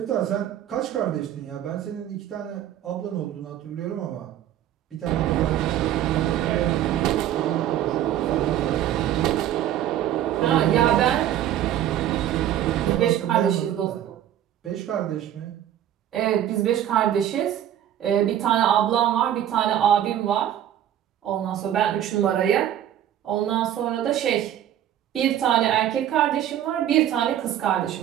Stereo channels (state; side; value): quieter; left; 11.3 dB